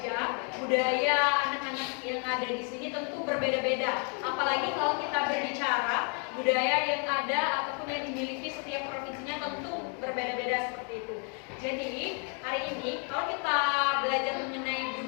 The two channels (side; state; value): right; quieter; 38.9 dB